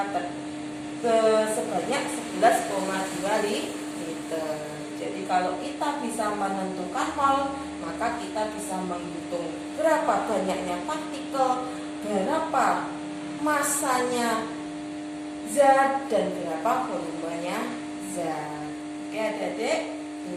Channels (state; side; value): identical; both; correlation 1.00